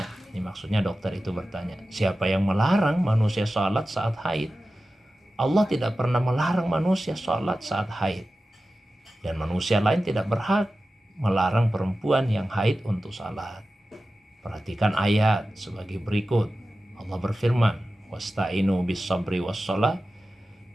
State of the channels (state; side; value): normal; both; correlation 0.94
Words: ini maksudnya dokter itu bertanya, siapa yang melarang manusia sholat saat haid? Allah tidak pernah melarang manusia sholat saat haid. Dan manusia lain tidak berhak melarang perempuan yang haid untuk sholat. Perhatikan ayat sebagai berikut. Allah berfirman, "Wasta'inu bis sabri was sholat,